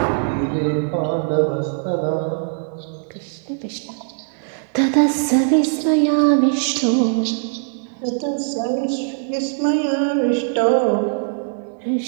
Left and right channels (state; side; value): silent; left; digital silence